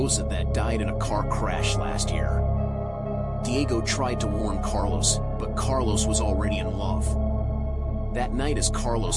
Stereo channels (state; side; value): identical; both; correlation 1.00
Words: that died in a car crash last year. Diego tried to warn Carlos, but Carlos was already in love. That night as